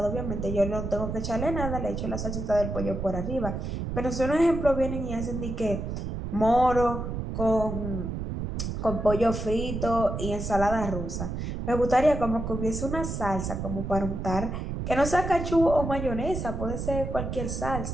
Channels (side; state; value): right; noise; rumble, 4 dB below the sound